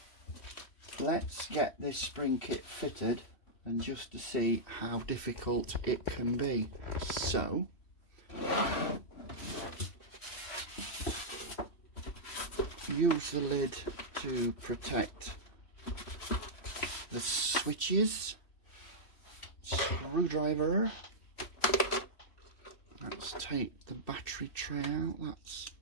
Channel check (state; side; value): late; right; 3.1 ms